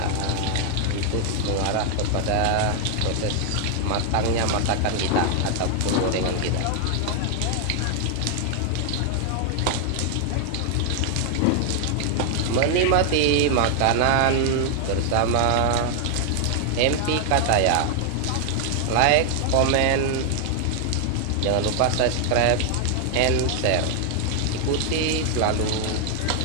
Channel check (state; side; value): different; both; correlation 0.00